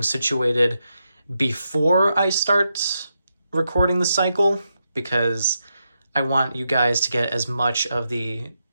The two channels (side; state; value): both; inverted; correlation -0.85